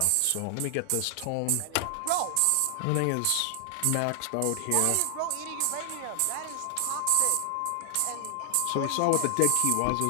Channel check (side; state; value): both; different; correlation 0.00